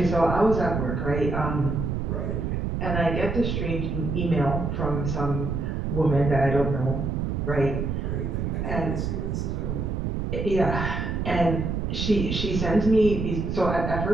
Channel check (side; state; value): right; noise; rumble, 2 dB below the sound